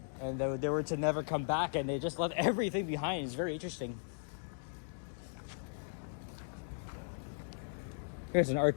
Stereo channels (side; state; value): right; silent; digital silence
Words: and they were to never come back, and they just left everything behind. It's very interesting. Here's an Art